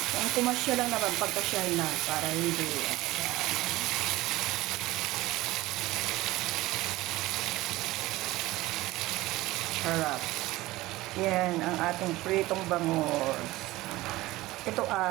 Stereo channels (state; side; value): quieter; left; 18.3 dB